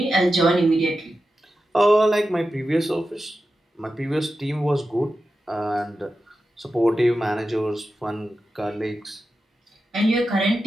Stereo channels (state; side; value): normal; both; correlation 0.91